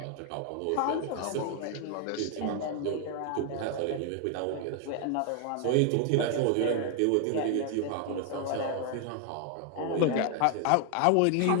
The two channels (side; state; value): both; different; correlation 0.00